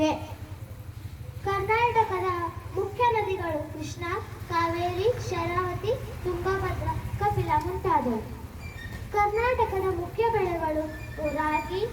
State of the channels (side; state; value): both; identical; correlation 1.00